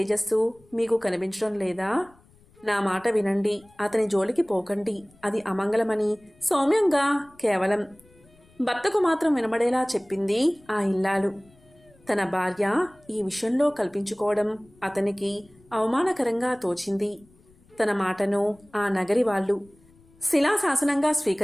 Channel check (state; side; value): noise; left; rumble, 29 dB below the sound